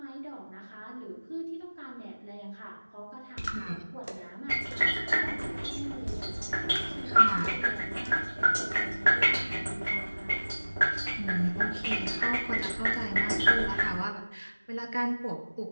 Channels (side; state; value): both; inverted; correlation -1.00